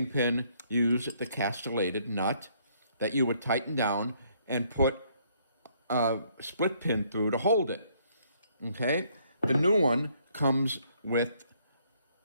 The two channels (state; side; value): inverted; both; correlation -0.67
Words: used the castellated nut that you would tighten down and put a split pin through to hold it. Okay? The new one comes with